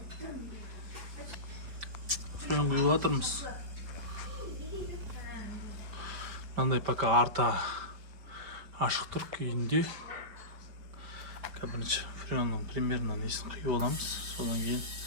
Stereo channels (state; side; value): late; left; 5.1 ms